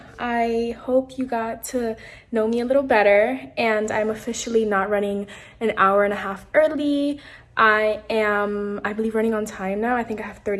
I hope you got to know me a little better, and I'm officially not running an hour and a half early. I believe, running on time now. I think I have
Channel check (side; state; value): both; identical; correlation 1.00